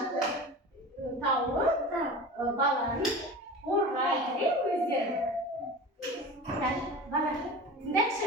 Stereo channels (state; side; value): normal; both; correlation 0.33